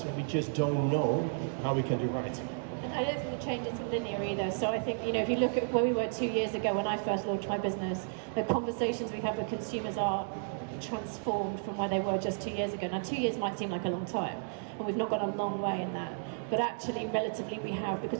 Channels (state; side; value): silent; left; digital silence